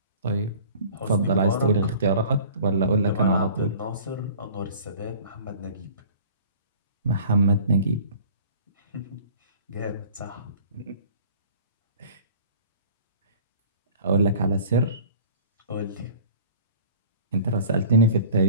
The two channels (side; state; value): both; inverted; correlation -0.46